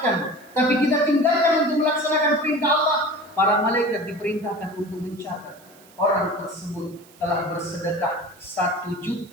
tapi kita tinggalkan untuk melaksanakan perintah Allah, para malaikat diperintahkan untuk mencatat orang tersebut telah bersedekah 1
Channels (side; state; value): right; noise; hiss, 26 dB below the sound